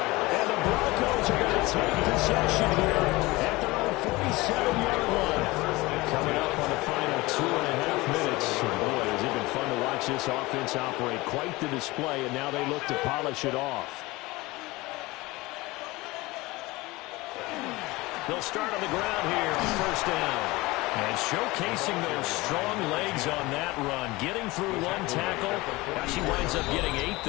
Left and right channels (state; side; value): quieter; right; 21.4 dB